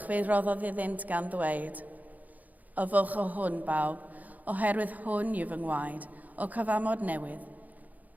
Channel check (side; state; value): left; late; 0.079 ms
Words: fe roddodd iddynt gan ddweud, Yfwch o hwn bawb, oherwydd hwn yw fy ngwaed o cyfamod newydd,